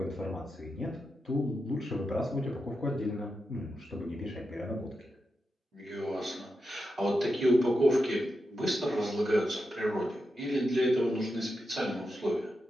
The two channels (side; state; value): both; normal; correlation 0.88